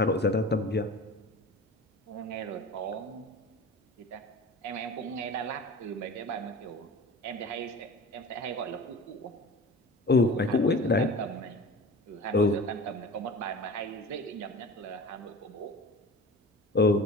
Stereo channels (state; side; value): normal; both; correlation 0.37